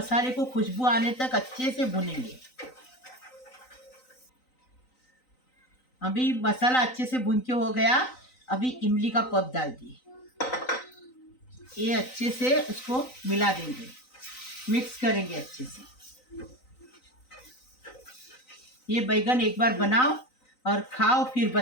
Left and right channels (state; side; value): late; right; 3.9 ms